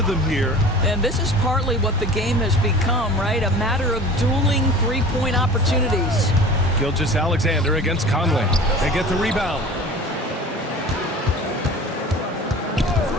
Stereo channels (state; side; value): normal; both; correlation 0.41